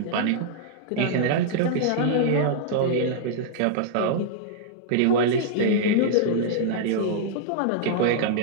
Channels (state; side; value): different; both; correlation -0.01